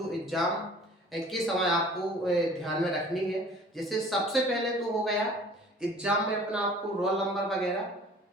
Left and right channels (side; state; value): both; normal; correlation 0.49